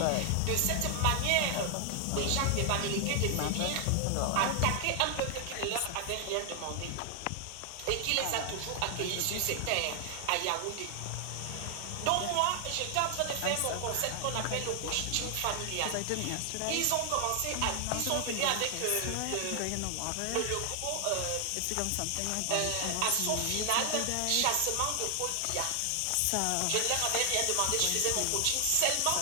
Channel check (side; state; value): both; different; correlation 0.00